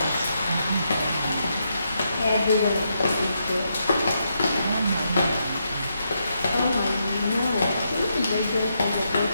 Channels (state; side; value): inverted; both; correlation -0.81